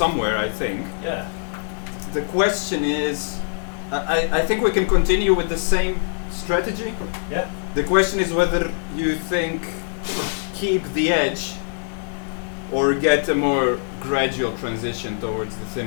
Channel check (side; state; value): right; silent; 60 dB below the other